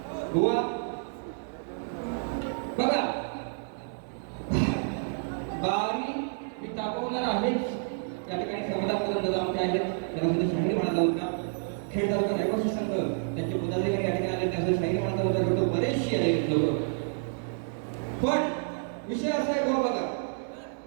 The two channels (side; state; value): left; silent; digital silence